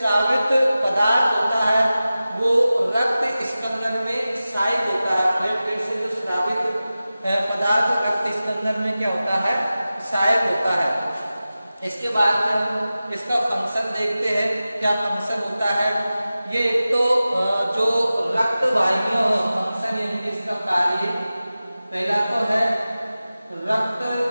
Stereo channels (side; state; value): both; inverted; correlation -0.95